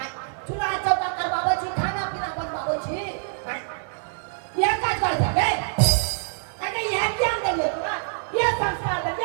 चूल्हा चौका करवाबै छी, खाना पीना बनवाबै छी। यह काज कर जाबे अरे यह ज्ञान देलिए तोरा, यह संस्कार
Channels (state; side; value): silent; left; digital silence